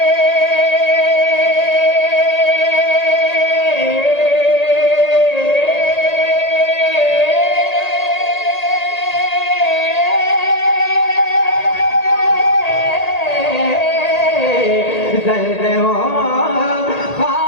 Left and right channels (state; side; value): late; right; 1.8 ms